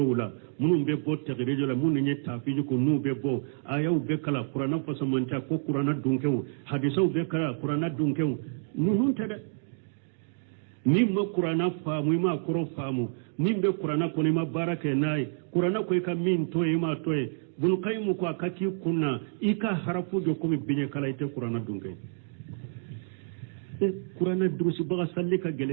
munum be bo tegrejo la mun ni tafiji ko nu be bo ayaw be kala qur'ana fasamanta ko qur'ana dunke hadisa be kala qur'ana dunke nu nun tada ni ma qur'ana faamu ma koro faamu ni be qur'ana ko ni ma barake nay qur'ana ko ka min toy ma toy bul qaymu ko akaki kunna ika harafu jo ko mi binye kala ite qur'ana dunke qur'ana durusi baga sallika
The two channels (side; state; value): left; silent; digital silence